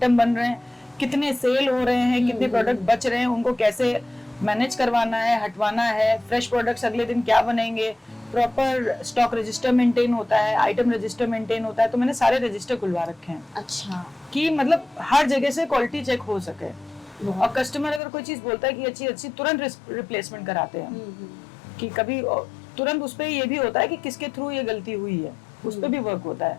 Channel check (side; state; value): right; drops out; at 18.0 s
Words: बन रहे हैं, कितने सेल हो रहे हैं, कितने प्रोडक्ट बच रहे हैं, उनको कैसे मैनेज करवाना है, हटवाना है, फ्रेश प्रोडक्ट्स अगले दिन क्या बनेंगे, प्रॉपर स्टॉक रजिस्टर मेंटेन होता है, आइटम रजिस्टर मेंटेन होता है। तो मैंने सारे रजिस्टर खुलवा रखे हैं। अच्छा। कि मतलब हर जगह से क्वालिटी चेक हो सके, और कस्टमर अगर कोई चीज बोलता है कि अच्छी तुरंत रिप्लेसमेंट कराते हैं। कि कभी तुरंत उस पे ये भी होता है कि किसके थ्रू ये गलती हुई है, उस पे भी वर्क होता है।